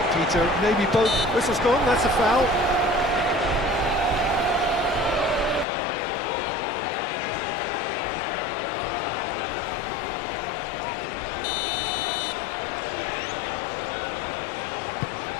Peter. Maybe both. Whistle's gone, that's a foul.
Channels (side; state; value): right; drops out; at 5.7 s